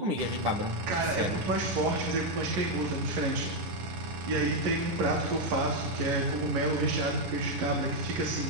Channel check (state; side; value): late; left; 11 ms